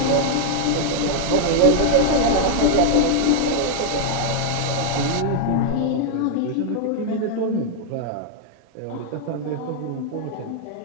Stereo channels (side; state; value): both; different; correlation 0.00